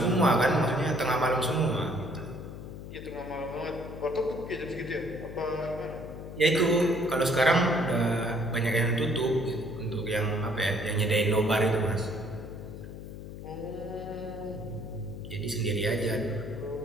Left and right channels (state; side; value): noise; left; hum, 11 dB below the sound